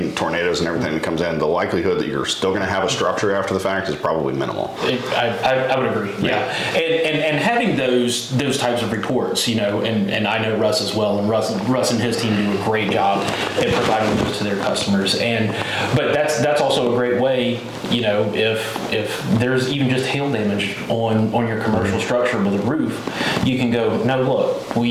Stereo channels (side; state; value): both; identical; correlation 1.00